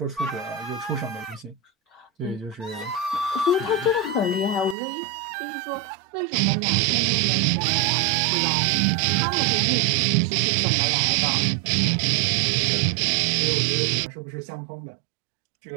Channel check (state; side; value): drops out; left; at 4.8 s